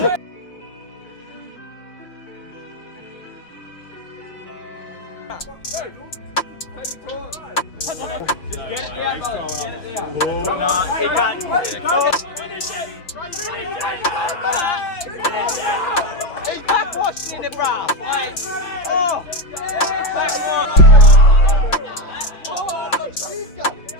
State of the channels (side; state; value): right; late; 5.7 ms